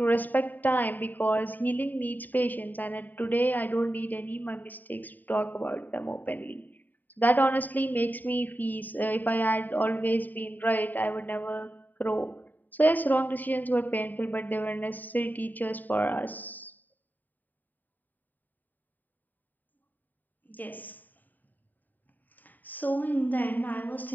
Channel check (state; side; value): late; right; 0.087 ms